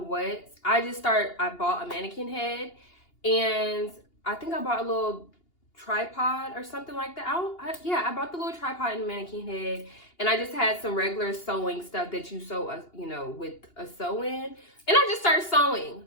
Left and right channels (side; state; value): right; late; 2.8 ms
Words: I bought a mannequin head, and I think I bought a little tripod or something like that. I bought the little tripod and mannequin head, and I just had some regular sewing stuff that you sew, you know, with a sew-in, and I just started sewing